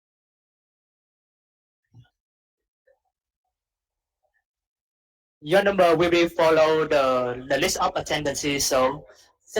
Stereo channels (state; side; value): identical; both; correlation 1.00